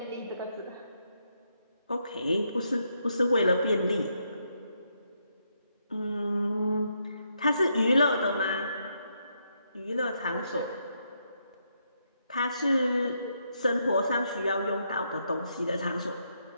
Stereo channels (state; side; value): inverted; both; correlation -0.78